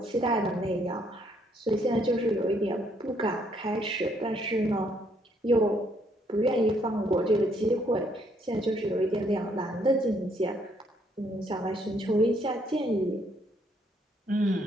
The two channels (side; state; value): both; normal; correlation 0.69